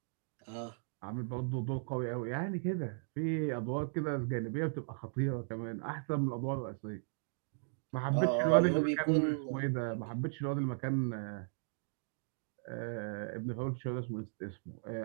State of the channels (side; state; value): left; silent; digital silence